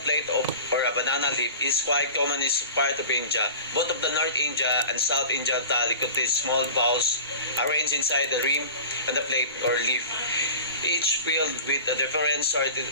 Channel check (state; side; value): inverted; both; correlation -0.37